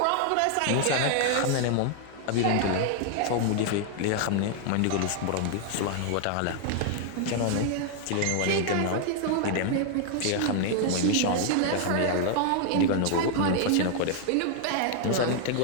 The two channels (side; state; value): both; different; correlation 0.00